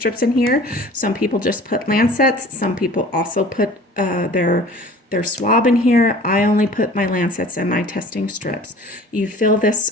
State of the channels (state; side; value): normal; both; correlation 0.46